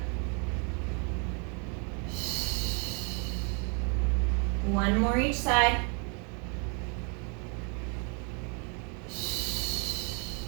One more each side.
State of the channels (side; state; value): left; quieter; 37.3 dB